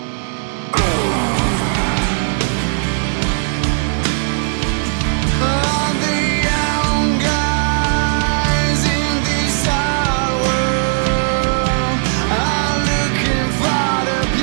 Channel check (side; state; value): left; silent; 68 dB below the other